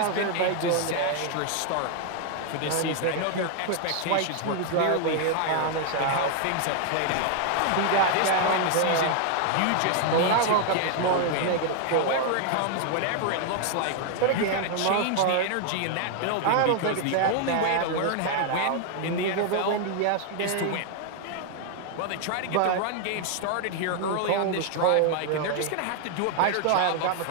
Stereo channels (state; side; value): different; both; correlation 0.00